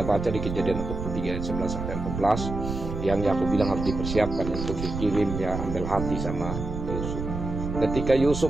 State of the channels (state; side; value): noise; right; rumble, 5 dB below the sound